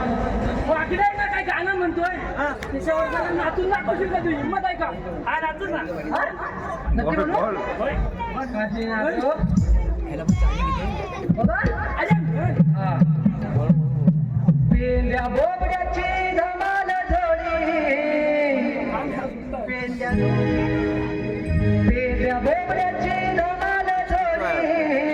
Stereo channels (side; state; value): both; identical; correlation 1.00